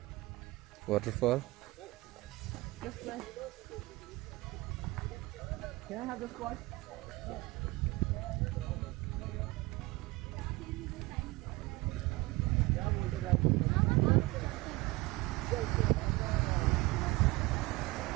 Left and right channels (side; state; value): left; quieter; 21.8 dB